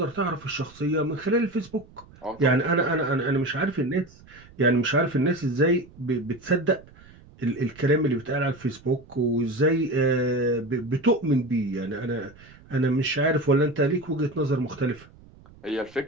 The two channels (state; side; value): noise; right; rumble, 24 dB below the sound